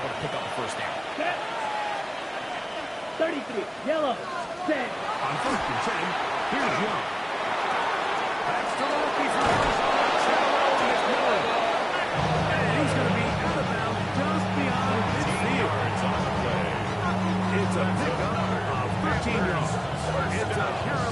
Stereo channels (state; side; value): identical; both; correlation 1.00